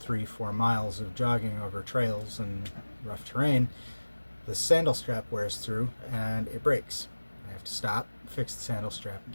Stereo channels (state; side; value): inverted; both; correlation -1.00